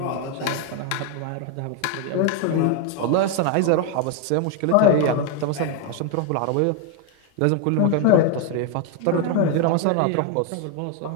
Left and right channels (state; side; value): different; both; correlation 0.01